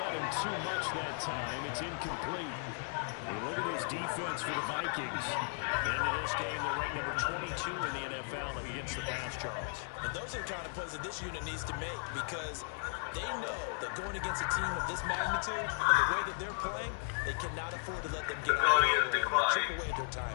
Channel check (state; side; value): silent; right; 54 dB below the other